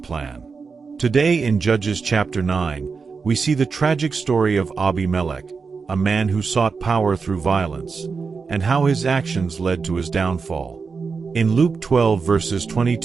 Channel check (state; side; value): quieter; left; 5.0 dB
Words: Today in Judges chapter 9, we see the tragic story of Abimelek, a man who sought power through violence, and how his actions led to his downfall. In Luke 12 verses